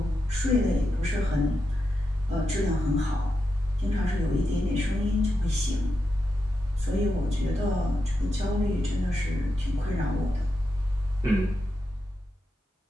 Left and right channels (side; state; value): both; normal; correlation 0.87